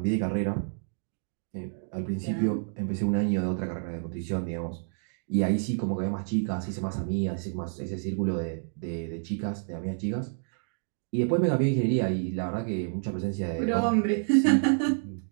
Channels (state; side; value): silent; left; digital silence